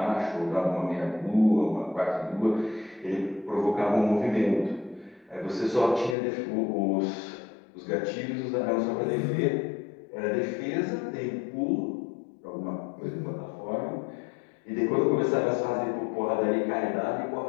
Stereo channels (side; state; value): right; drops out; at 6.2 s